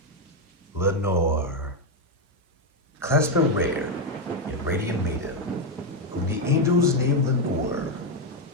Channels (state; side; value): normal; both; correlation 0.05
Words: Lenore. Clasp a rare and radiant maiden, whom the angels name Lenore.